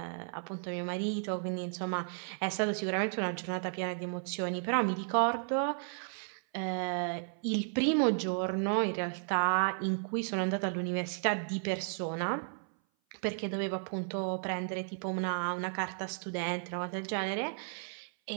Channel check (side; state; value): left; silent; 55 dB below the other